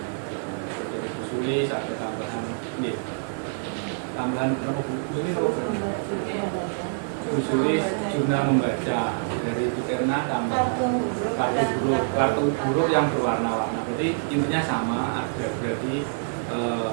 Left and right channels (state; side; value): silent; left; 61 dB below the other